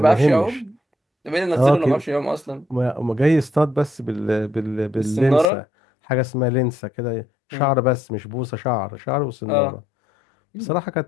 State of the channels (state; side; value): drops out; right; at 5.5 s